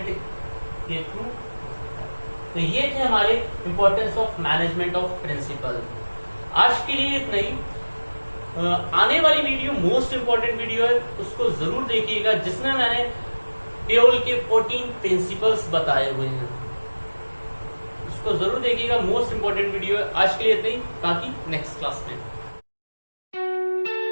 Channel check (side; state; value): both; inverted; correlation -1.00